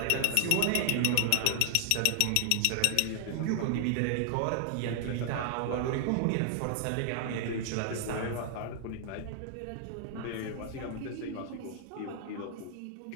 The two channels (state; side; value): different; both; correlation 0.00